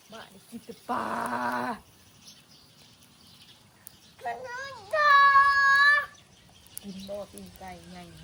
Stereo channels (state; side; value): identical; both; correlation 1.00